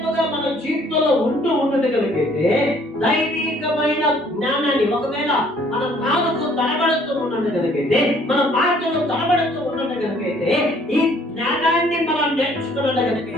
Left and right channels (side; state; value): both; normal; correlation 0.60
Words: మన జీవితంలో ఉన్నది కనుకైతే దైవికమైన జ్ఞానాన్ని, ఒకవేళ మన నాలుగు తడబడుతూ ఉన్నది కనుకైతే, మన మాటలు తడబడుతూ ఉన్నది కనుకైతే, ఈ జ్ఞానాన్ని మనం నేర్చుకున్నది